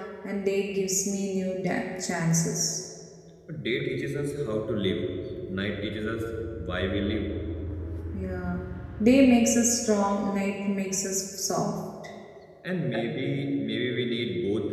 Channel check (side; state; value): both; identical; correlation 1.00